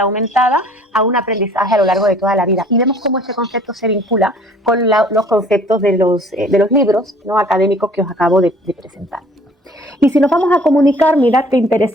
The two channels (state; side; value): normal; both; correlation 0.53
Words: aumentada a un aprendizaje a lo largo de toda la vida, y vemos cómo este concepto se vincula con los conceptos de los libros, ¿no?, académicos que os acabo de presentar. Y si nos vamos a Comunicar, mirad qué